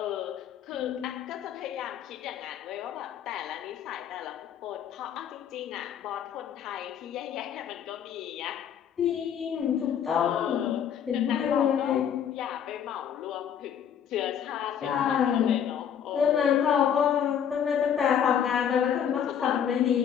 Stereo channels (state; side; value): quieter; right; 8.6 dB